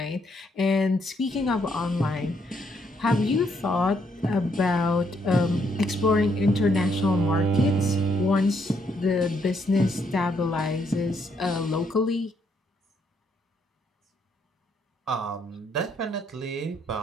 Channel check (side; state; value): both; normal; correlation 0.73